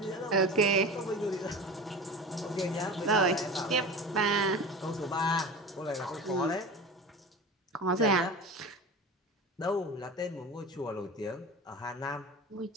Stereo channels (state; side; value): normal; both; correlation 0.32